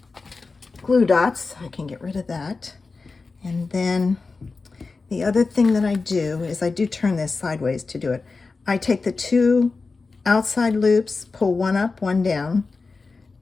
glue dots, I can get rid of that. And then the other thing that I do is I do turn this sideways to do it. I take the 2 outside loops, pull one up, one down,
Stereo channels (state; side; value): quieter; right; 4.1 dB